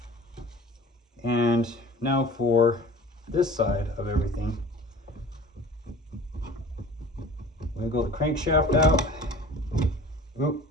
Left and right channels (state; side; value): normal; both; correlation 0.43